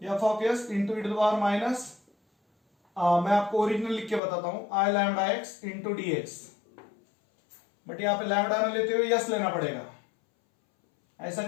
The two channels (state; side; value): drops out; right; at 4.2 s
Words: f of s into e to the power minus, मैं आपको ओरिजिनल लिख के बताता हूं, i lambda x into d x, but यहां पे लैम्डा ना लेते हुए यस लेना पड़ेगा। ऐसा